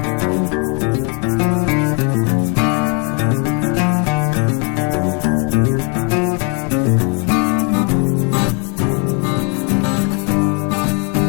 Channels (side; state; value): right; quieter; 35.6 dB